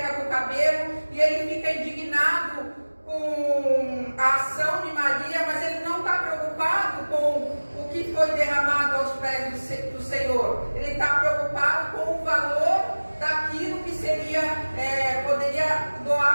com o cabelo, e ele fica indignado com a ação de Maria, mas ele não está preocupado com o que foi derramado aos pés do Senhor. Ele está preocupado com o valor daquilo que poderia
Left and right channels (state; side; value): inverted; both; correlation -1.00